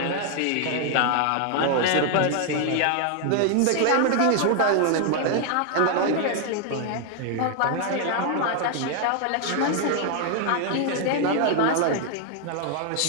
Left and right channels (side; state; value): both; different; correlation 0.00